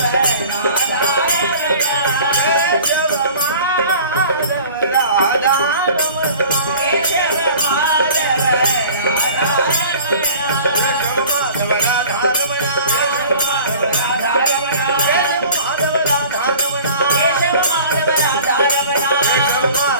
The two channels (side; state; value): both; inverted; correlation -0.44